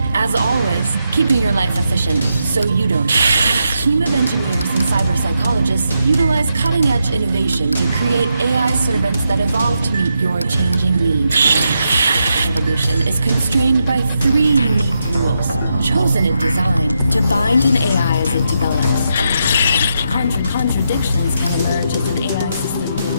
As always, keeping your life efficient so you don't. A team of engineers and cyber psychologists utilize cutting-edge innovation to create AI servants that evolve to meet your changing needs. Evolution is constrained by 3 unique rules, chosen in design to bind an AI as it develops. Contradictions can emerge as an AI system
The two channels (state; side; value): inverted; both; correlation -0.83